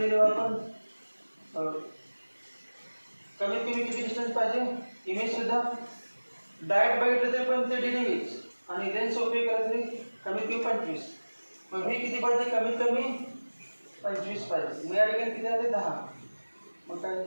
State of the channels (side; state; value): both; inverted; correlation -1.00